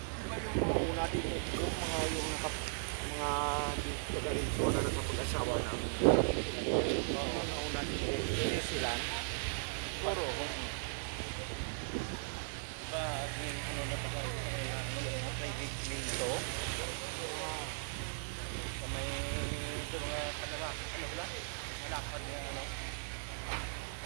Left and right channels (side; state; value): left; silent; 53 dB below the other